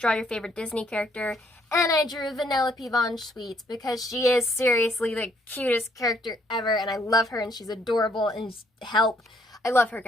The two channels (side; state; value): both; normal; correlation 0.68